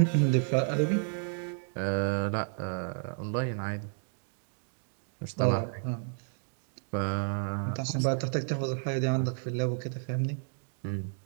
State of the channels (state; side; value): silent; left; 57 dB below the other